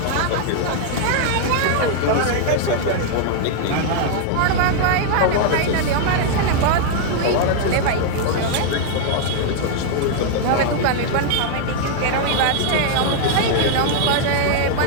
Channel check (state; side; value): different; both; correlation 0.00